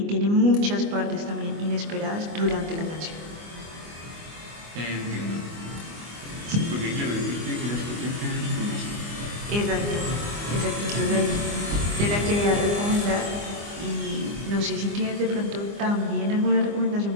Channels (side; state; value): left; late; 24 ms